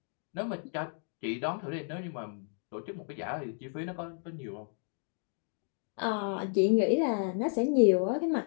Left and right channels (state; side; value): silent; right; 56 dB below the other